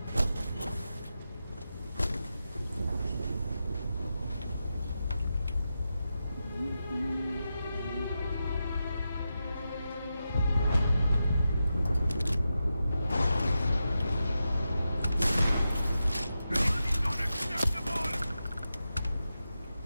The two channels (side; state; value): both; inverted; correlation -0.89